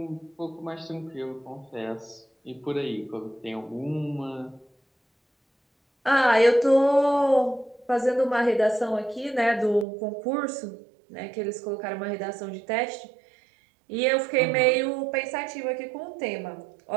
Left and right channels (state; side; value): drops out; left; at 9.9 s